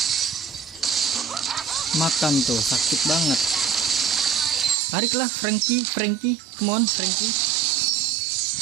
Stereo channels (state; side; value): drops out; left; at 4.8 s